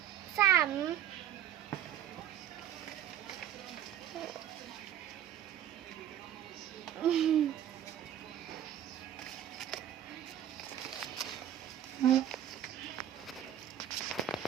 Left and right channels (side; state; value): left; quieter; 10.6 dB